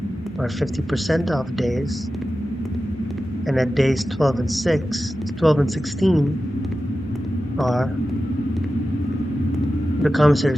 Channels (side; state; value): both; normal; correlation 0.93